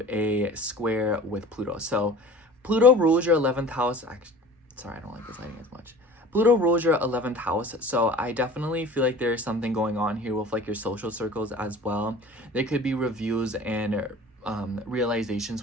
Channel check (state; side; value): normal; both; correlation 0.42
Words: a square with Pluto. So Pluto rules your 11th house. Actually, sorry, I don't like this lighting as much. Pluto rules your 11th house. So I definitely feel like there's something going on here with like your social circles as well. There could be reviews and realizations